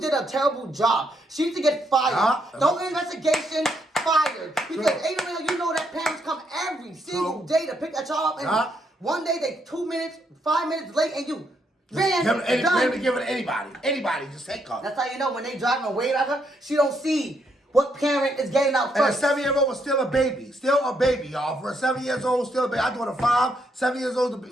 a terrible job. She needs to get fired. No investigation, fired. Because ain't no way you know that parents come every single day to pick that child up, and one day they 2 minutes, 5 minutes late, and you ran. Give it to anybody. Anybody, just take her. That's how you know when they driving away at her, she don't see what parent is getting out first. And a 7-year-old was still a baby. Still a baby, y'all. For a 7 years old, still a baby. I daughter 5, 7 years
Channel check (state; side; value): normal; both; correlation 0.76